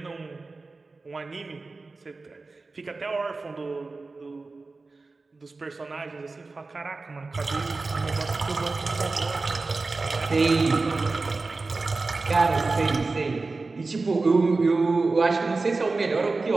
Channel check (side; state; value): left; quieter; 3.7 dB